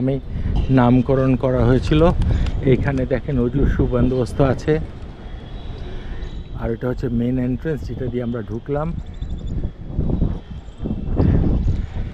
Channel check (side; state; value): both; identical; correlation 1.00